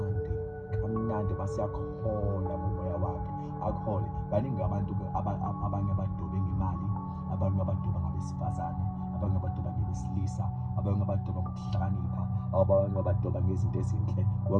kamnandi basiyakhola ngomoya wakhe akhole. Baningi abantu abanye abadobe ngemali, abanye abadoba ngabesifazane, abanye abadoba ngebesilisa, abanye abadoba ngokuhlakanipha, abanye abadoba ngezinto ezinhle,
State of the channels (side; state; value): both; identical; correlation 1.00